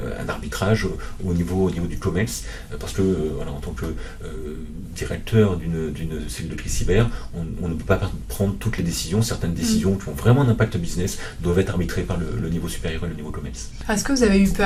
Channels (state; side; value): identical; both; correlation 1.00